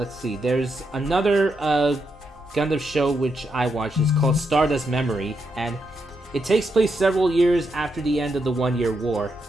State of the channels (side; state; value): both; normal; correlation 0.82